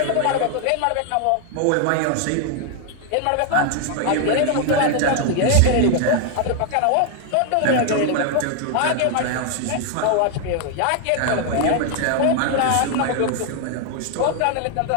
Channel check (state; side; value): different; both; correlation 0.00